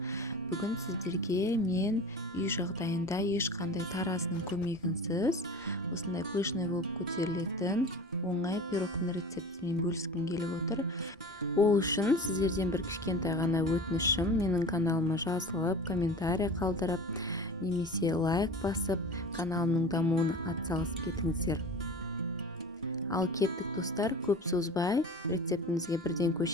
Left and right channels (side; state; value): both; normal; correlation 0.36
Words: Бүгін сіздерге мен үй жағдайында ешқандай таразының көмегінсіз осындай пышный болып көтерілетін оңай пирогтың рецептімен бөліскім келіп отыр. Ол үшін сіздерден бір кішкентай ғана өтінішім, менің каналыма жазылып, комментарий қалдырып, немесе лайк басып, каналымның дамуына атсалысып кетіңіздер. Ал кеттік достар, көп созбай рецептімізге бірден